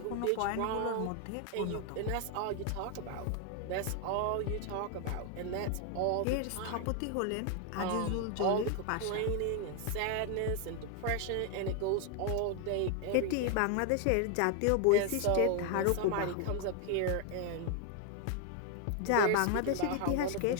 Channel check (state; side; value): different; both; correlation 0.00